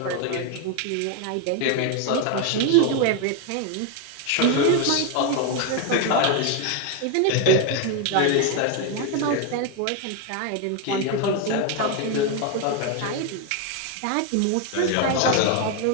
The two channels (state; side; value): different; both; correlation 0.01